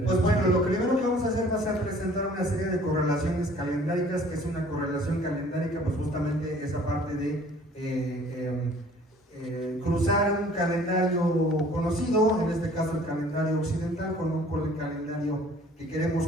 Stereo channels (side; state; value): both; normal; correlation 0.53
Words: pues bueno, lo primero que vamos a hacer va a ser presentar una serie de correlaciones calendáricas, que es una correlación calendárica, pues justamente esa parte de cruzar un calendario conocido, en este caso el calendario occidental, con el calendario que